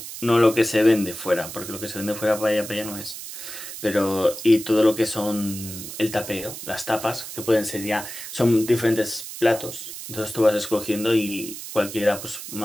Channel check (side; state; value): right; noise; hiss, 10 dB below the sound